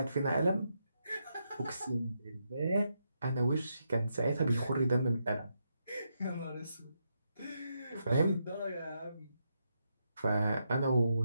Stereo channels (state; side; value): inverted; both; correlation -0.82